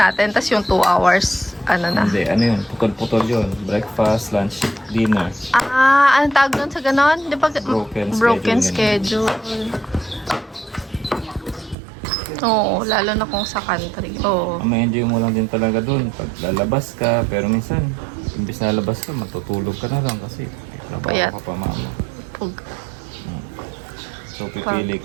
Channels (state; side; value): drops out; left; at 11.8 s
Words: tas yung 2 hours, na? Hindi, yun? Putol-putol yun. Breakfast, lunch, dinner. Anong tawag doon sa ganon? Di ba? Broken schedule. Oo, lalo na kung sa country. Oo. May-enjoy mo lang din talaga dun pag lalabas ka. Pero minsan, imbis na lalabas ka, matutulog ka na lang kasi Payat. trabaho ka pa mama. Pug. So pipili